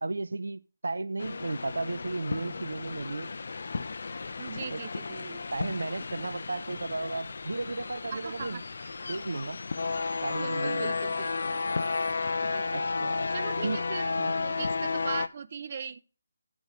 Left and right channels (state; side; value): inverted; both; correlation -0.92